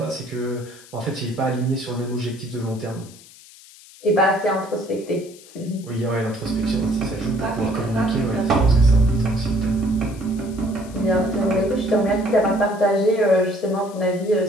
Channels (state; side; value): noise; left; hiss, 22 dB below the sound